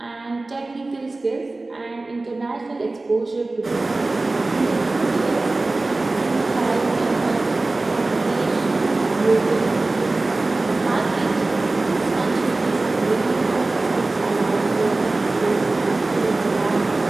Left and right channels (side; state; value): left; quieter; 3.2 dB